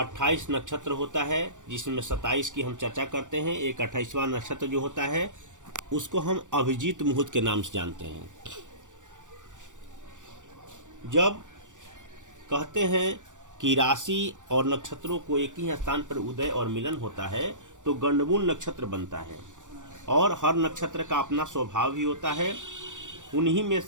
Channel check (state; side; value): late; left; 0.86 ms